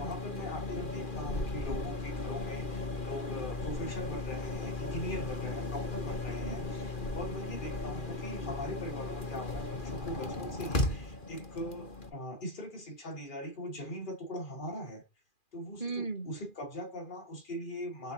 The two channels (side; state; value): right; late; 2.4 ms